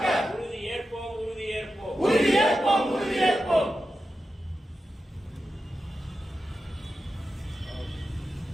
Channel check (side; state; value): both; normal; correlation 0.91